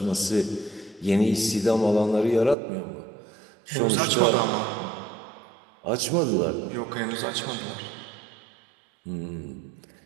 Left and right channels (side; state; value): left; drops out; at 2.6 s